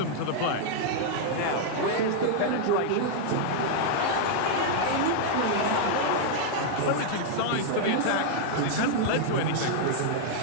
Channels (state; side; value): different; both; correlation -0.01